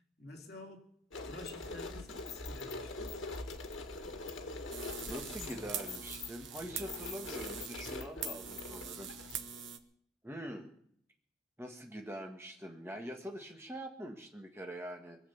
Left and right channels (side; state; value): both; normal; correlation 0.46